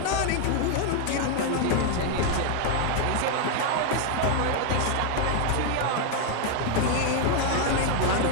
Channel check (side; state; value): both; different; correlation 0.00